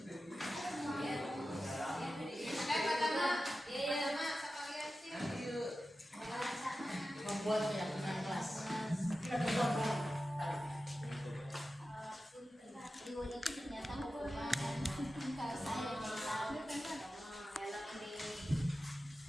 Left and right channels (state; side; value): normal; both; correlation 0.93